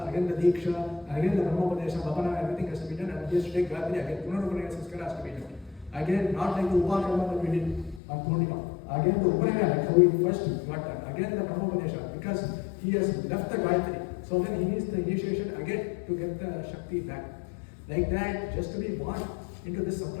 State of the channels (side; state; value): right; drops out; at 8.0 s